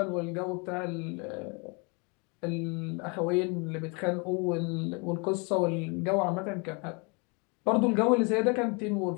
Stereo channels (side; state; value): right; quieter; 32.0 dB